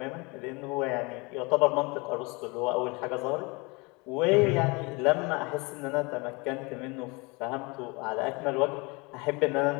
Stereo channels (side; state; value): right; quieter; 27.2 dB